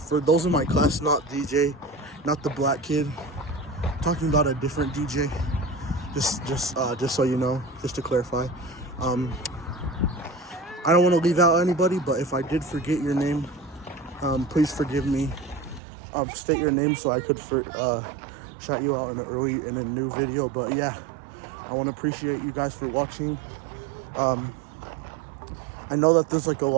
those in my class, not DJ, not the black kid. I'm talking about a different DJ. Just so you know, just to clarify. I don't want to leave out anybody, but if I did forget your name, please forgive me. State your name so I could shout you out in a new video. But yeah, I want to appreciate you guys for watching. I know that there's like a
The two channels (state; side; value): drops out; left; at 15.8 s